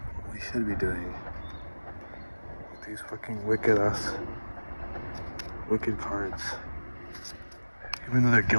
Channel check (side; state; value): both; inverted; correlation -1.00